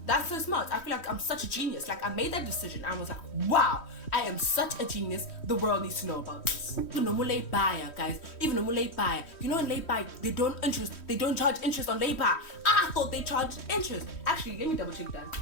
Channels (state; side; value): late; right; 3.1 ms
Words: That's so smart. I feel like I'm such a genius. Like I made that decision. I was like, wow, I am such a genius. The world needs to know about this. Even no more late buyer, guys. Even no more late buyer. You know in late buy, they don't charge interest on late buy. I thought they charged interest. Actually, let me double check that.